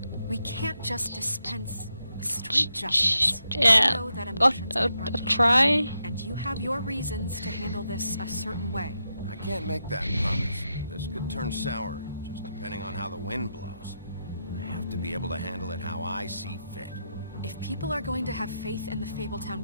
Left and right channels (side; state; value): both; inverted; correlation -0.85